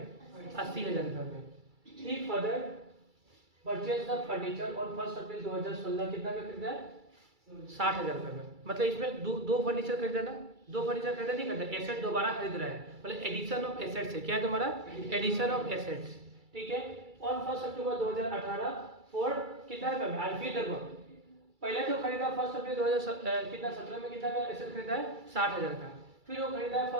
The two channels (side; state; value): left; late; 2.3 ms